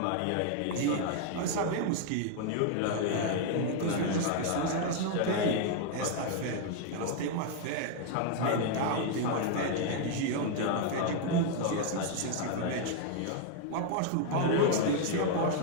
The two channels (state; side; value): different; both; correlation 0.00